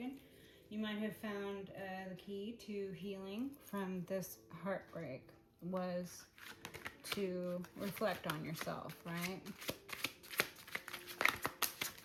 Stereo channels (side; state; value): both; identical; correlation 1.00